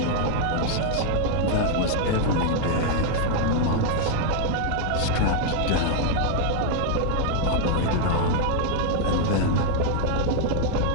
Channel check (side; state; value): both; different; correlation 0.00